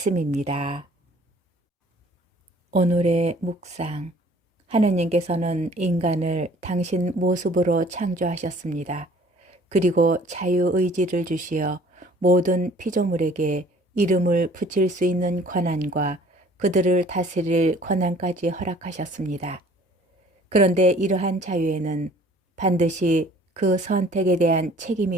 오늘의 묵상. 하느님께서는 인간을 당신 모습으로 창조하셨습니다. 그리고 자유의지를 주시어 모든 피조물에게 이름을 붙일 수 있는 권한과 그들을 다스릴 권한까지 허락하셨습니다. 그런데 이러한 자유에는 반드시 그 선택에 대한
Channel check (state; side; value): normal; both; correlation 0.54